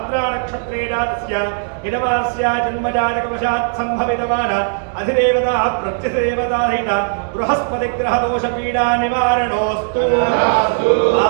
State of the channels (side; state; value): left; silent; 61 dB below the other